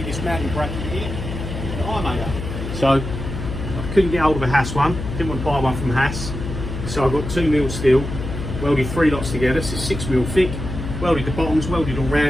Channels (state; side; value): noise; left; hum, 6 dB below the sound